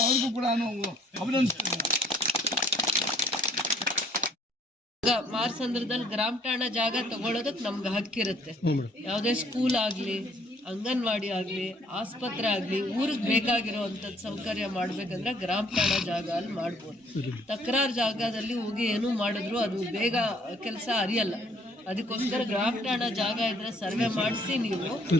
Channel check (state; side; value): normal; both; correlation 0.61